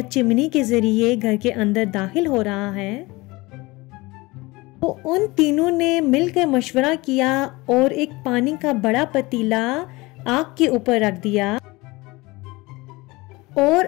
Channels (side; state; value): right; quieter; 22.4 dB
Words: चिमनी के जरिए घर के अंदर दाखिल हो रहा है तो उन तीनों ने मिलकर मशवरा किया और एक पानी का बड़ा पतीला आग के ऊपर रख दिया और